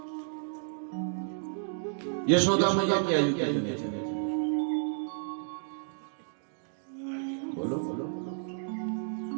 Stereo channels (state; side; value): silent; left; digital silence